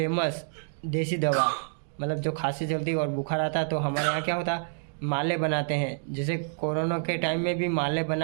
देसी दवा, मतलब जो खांसी चलती और बुखार आता तो हमारे यहाँ क्या होता, माले बनाते हैं। जैसे कोरोना के टाइम में भी माले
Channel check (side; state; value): left; silent; digital silence